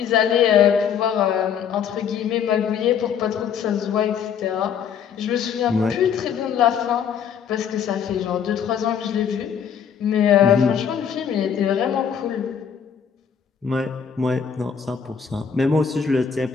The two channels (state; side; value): quieter; right; 7.6 dB